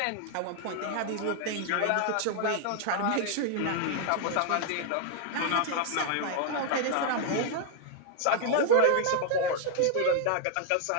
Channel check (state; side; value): different; both; correlation 0.00